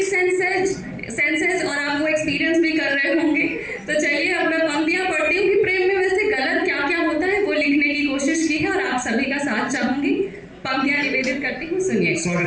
senses और आप वो एक्सपीरियंस भी कर रहे होंगे। तो चलिए अब मैं पंक्तियां पढ़ती हूँ कि प्रेम में वैसे गलत क्या क्या होता है वो लिखने की कोशिश की है और आप सभी का साथ चाहूंगी। पंक्तियां निवेदित करती हूँ, सुनिए।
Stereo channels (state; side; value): identical; both; correlation 1.00